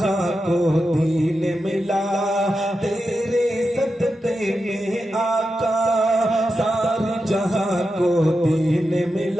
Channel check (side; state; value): both; normal; correlation 0.89